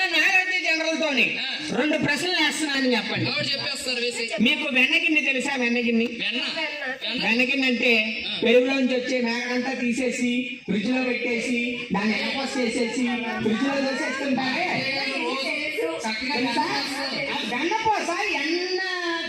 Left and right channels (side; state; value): both; identical; correlation 1.00